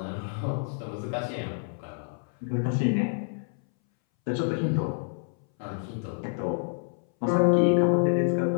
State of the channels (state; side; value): silent; right; 60 dB below the other